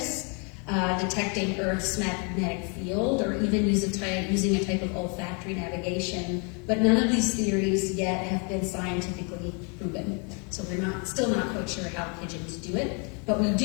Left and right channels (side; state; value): right; quieter; 36.1 dB